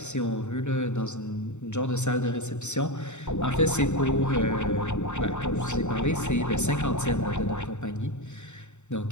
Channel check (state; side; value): late; right; 0.83 ms